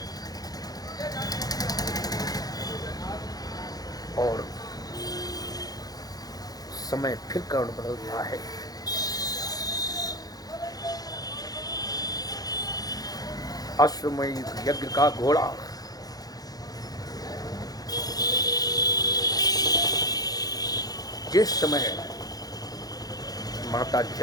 और समय फिर कर्ण बदल रहा है। अश्वमेध यज्ञ का घोड़ा जिस समय माता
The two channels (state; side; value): late; right; 0.18 ms